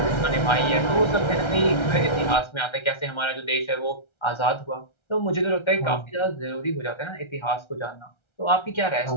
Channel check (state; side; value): late; right; 1.3 ms